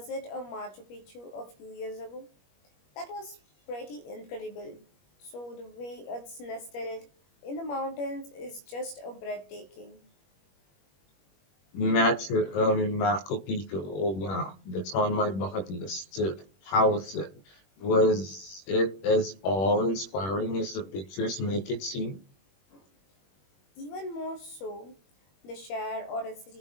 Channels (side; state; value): right; late; 21 ms